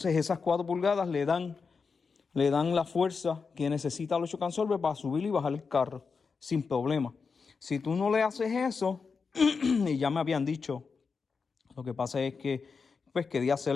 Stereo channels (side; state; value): right; quieter; 5.1 dB